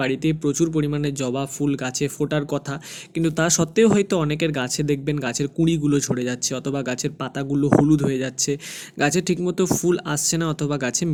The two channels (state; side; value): identical; both; correlation 1.00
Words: বাড়িতেই প্রচুর পরিমাণে জবা ফুল গাছে ফোটার কথা, কিন্তু তা সত্ত্বেও হয়তো অনেকের গাছে দেখবেন গাছের কুঁড়িগুলো ঝরে যাচ্ছে, অথবা গাছের পাতাগুলো হলুদ হয়ে যাচ্ছে, গাছে ঠিকমতো ফুল আসছে না, অথবা গাছে